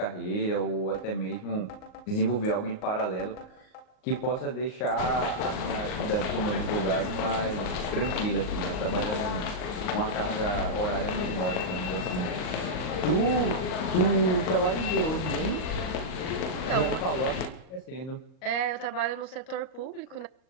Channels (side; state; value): right; late; 39 ms